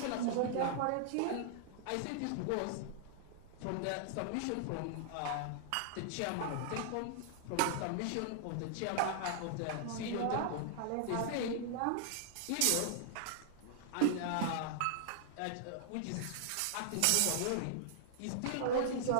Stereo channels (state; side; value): different; both; correlation -0.01